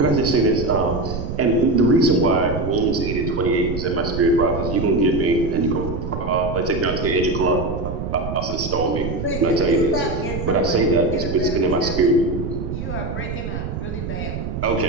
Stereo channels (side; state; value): right; noise; rumble, 5 dB below the sound